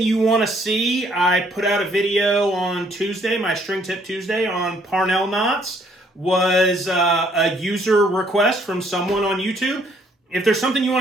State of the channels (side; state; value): both; normal; correlation 0.65